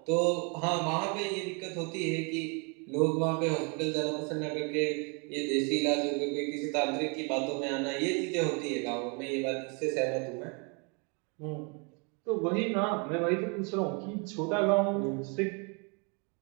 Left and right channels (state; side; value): quieter; left; 34.3 dB